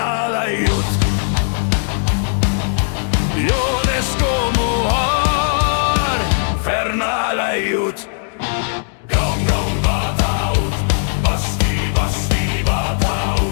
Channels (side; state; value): right; silent; digital silence